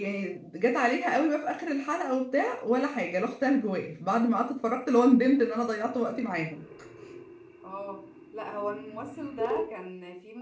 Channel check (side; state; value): both; identical; correlation 1.00